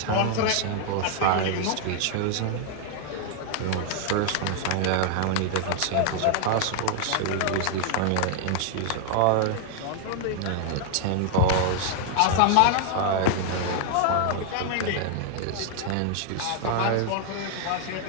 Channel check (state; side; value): different; both; correlation 0.00